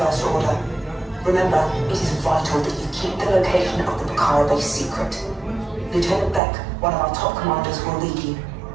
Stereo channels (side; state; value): left; drops out; at 6.4 s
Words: Order. Remember, it is vital that you keep the location of the Pucara base secret. Lieutenant Beck, one of our top commanders, will lead you.